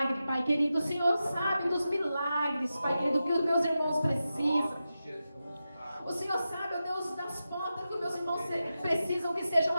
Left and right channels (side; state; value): both; inverted; correlation -0.91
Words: Pai querido. O Senhor sabe dos milagres, Pai querido, que os meus irmãos precisam. O Senhor sabe, ó Deus, das portas que os meus irmãos precisam que sejam